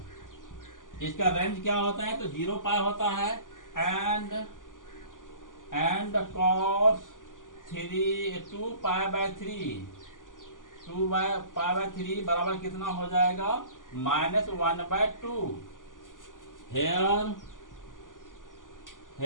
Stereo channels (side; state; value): right; late; 0.88 ms